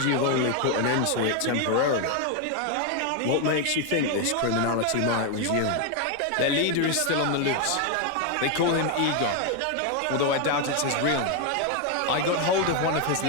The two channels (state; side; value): different; both; correlation 0.01